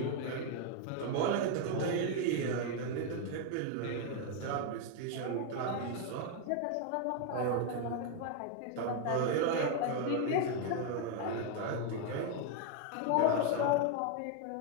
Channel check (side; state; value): both; different; correlation 0.01